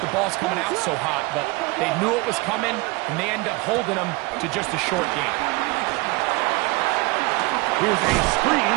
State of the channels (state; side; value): quieter; left; 24.3 dB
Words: ball's coming out so hot. But they knew it was coming, and they end up holding them to just a short game. Here's a screen